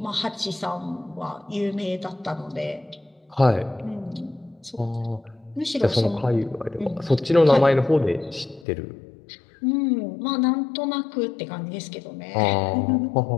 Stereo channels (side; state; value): right; drops out; at 8.7 s